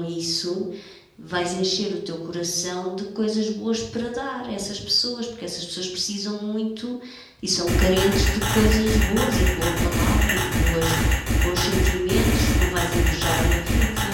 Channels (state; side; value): identical; both; correlation 1.00